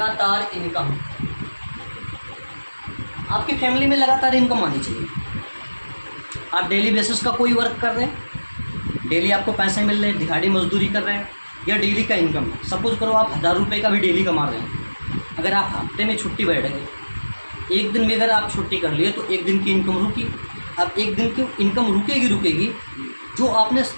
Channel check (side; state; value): both; inverted; correlation -1.00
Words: इनकम, आपकी फैमिली में लगातार इनकम आनी चाहिए। आप डेली बेसिस का कोई वर्क कर रहे हैं, डेली आपको पैसे मिल रहे हैं, दिहाड़ी मजदूरी कर रहे हैं, या डेली का इनकम है। सपोज करो आप 1000 रुपये का भी डेली कमा रहे हैं। अगर आप हफ्ते में छुट्टी बैठ गए, एक दिन भी अगर आप छुट्टी कर लिए तो एक दिन की इनकम रुकी। अब एक दिन की इनकम रुकेगी, जो आपने